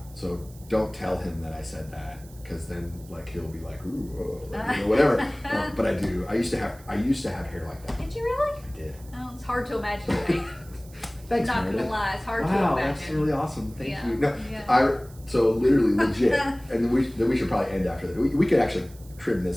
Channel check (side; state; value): right; noise; hiss, 24 dB below the sound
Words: So don't tell him that I said that, because then like he'll be like, ooh, you know, whatever. But I do. I used to have hair like that. Did you really? I did. Oh, it's hard to imagine. Right? Thanks, Not Meredith. gonna lie, it's hard to Wow, imagine. that's really awesome. Thank Yeah, you. No, yeah. so literally legit, and then we should probably end after that. We could actually trim